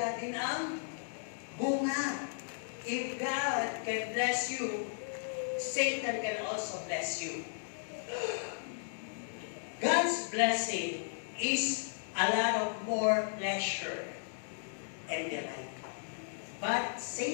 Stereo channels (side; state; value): right; silent; digital silence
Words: din ang bunga. If God can bless you, Satan can also bless you. God's blessing is a lot of more pleasure and delight. But